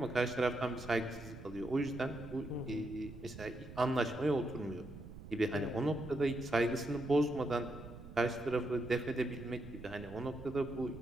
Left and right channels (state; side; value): noise; right; rumble, 14 dB below the sound